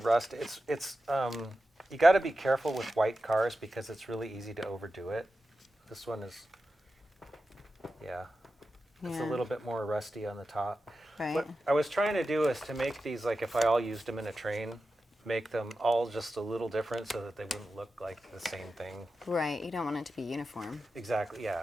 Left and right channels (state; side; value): normal; both; correlation 0.92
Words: rust. It's you got to be careful with white cars because it's really easy to overdo it. This one is, yeah, it's a Yeah. little bit more rusty on the top. Right. What I was trying to do is to make these, like if I all used them in a train, make them all just a little different so that they wouldn't look like the same thing. Right. You don't want it to be uniform. Exactly,